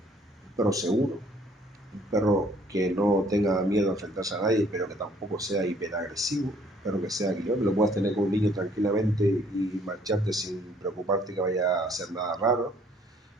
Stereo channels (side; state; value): both; normal; correlation 0.61